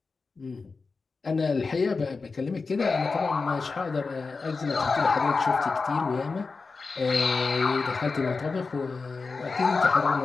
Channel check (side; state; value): right; quieter; 4.3 dB